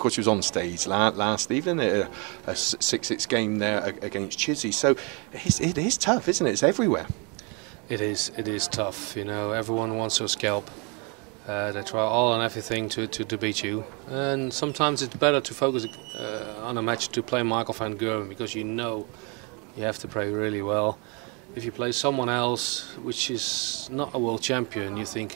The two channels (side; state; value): left; quieter; 33.0 dB